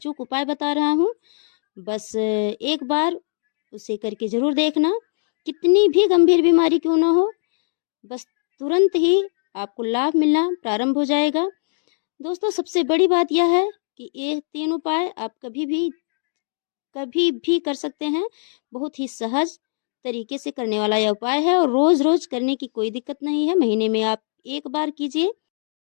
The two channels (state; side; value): silent; right; digital silence